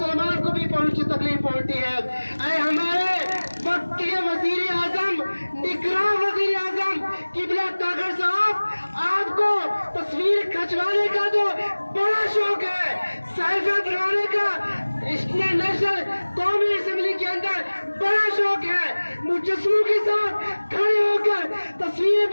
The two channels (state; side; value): inverted; both; correlation -1.00